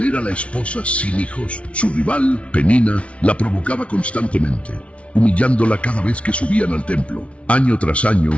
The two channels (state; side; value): late; right; 0.062 ms